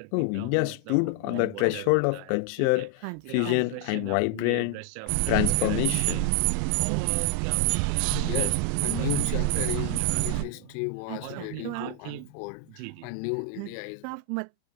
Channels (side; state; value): both; different; correlation 0.00